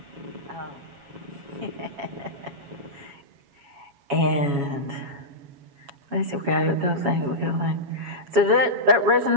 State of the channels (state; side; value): late; left; 7.2 ms